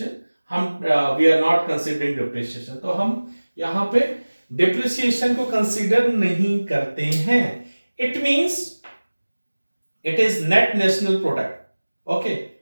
We are not considering depreciation. तो हम यहाँ पे depreciation को consider नहीं करते हैं. It means it is net national product. Okay,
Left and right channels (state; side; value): inverted; both; correlation -1.00